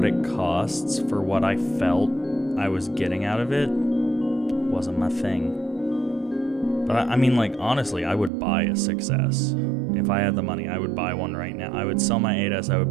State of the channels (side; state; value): left; drops out; at 8.3 s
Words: it costs, for what I felt I was getting out of it, wasn't my thing. But I mean, like, honestly, I would buy a 6S. If I had the money, I would buy one right now. I would sell my 8S, I would